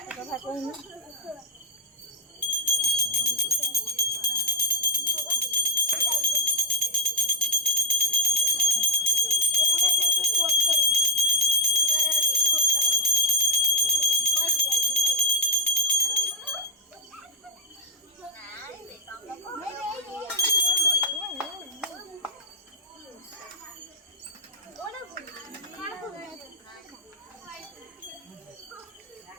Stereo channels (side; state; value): both; normal; correlation 0.03